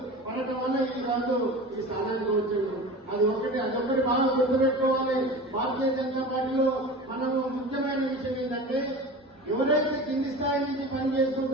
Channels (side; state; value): both; normal; correlation 0.34